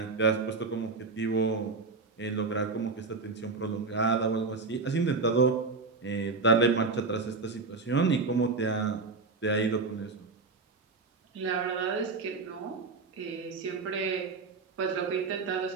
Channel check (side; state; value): left; quieter; 4.2 dB